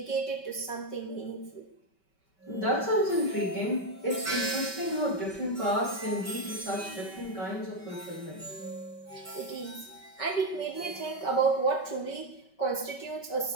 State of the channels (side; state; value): right; late; 5.2 ms